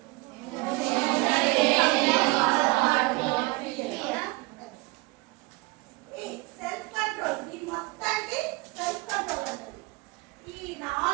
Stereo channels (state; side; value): quieter; left; 24.0 dB